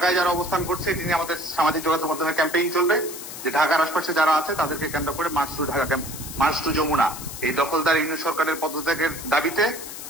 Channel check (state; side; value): noise; left; hiss, 10 dB below the sound